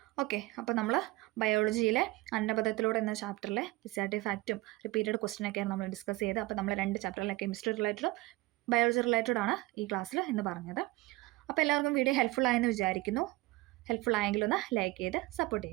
ഓക്കെ. അപ്പോൾ നമ്മൾ ബയോളജിയിലെ അന്നപദത്തിലൂടെ എന്ന ചാപ്റ്ററിലെ SAT ഫാക്റ്റും റിപ്പീറ്റഡ് ക്വസ്റ്റ്യനൊക്കെയാണ് നമ്മൾ ഡിസ്കസ് ചെയ്തത്. അപ്പോൾ നമ്മൾ 2 ചാപ്റ്ററിലെ കെമിസ്ട്രി റിലേറ്റഡും ബയോളജി റിലേറ്റഡ് ആണ് ഈ ക്ലാസ്സിൽ എന്ന് പറഞ്ഞത്. അപ്പോൾ എല്ലാവർക്കും വീഡിയോ ഹെൽപ്ഫുൾ ആയെന്ന് വിചാരിക്കുന്നു. ഹെൽപ്ഫുൾ ആയെങ്കിൽ ഒന്ന് ലൈക്ക് ചെയ്ത് സപ്പോർട്ട്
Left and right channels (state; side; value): quieter; left; 20.6 dB